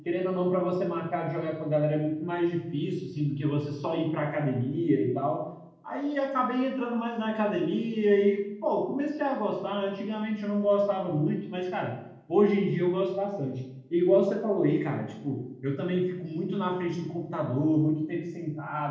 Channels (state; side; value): identical; both; correlation 1.00